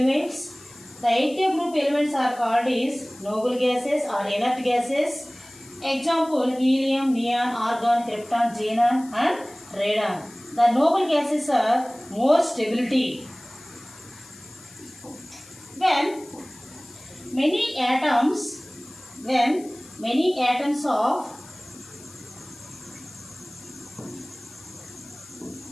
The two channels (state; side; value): noise; left; hiss, 21 dB below the sound